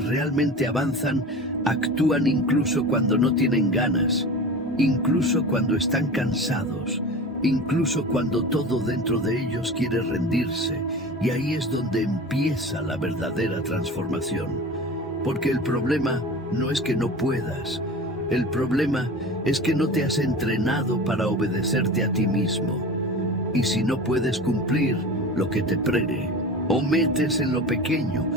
avanzan actúan incluso cuando no tienen ganas, incluso cuando están cansados, incluso cuando todo dentro de ellos quiere rendirse, y ahí es donde empieza la verdadera transformación. Porque el problema no es que no puedas, el problema es que no te has entrenado para obedecerte a ti mismo. Y si no puedes cumplir lo que te prene, o metes en lo pequeño,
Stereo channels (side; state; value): both; normal; correlation 0.33